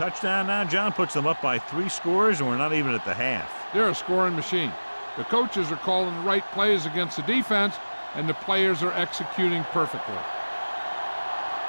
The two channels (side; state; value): both; inverted; correlation -1.00